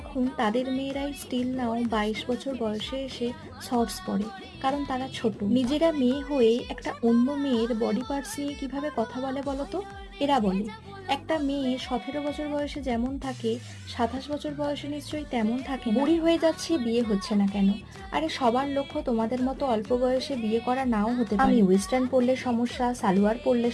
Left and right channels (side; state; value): both; identical; correlation 1.00